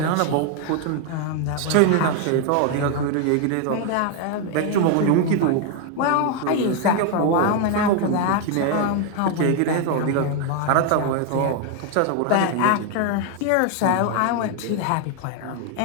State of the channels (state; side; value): different; both; correlation 0.01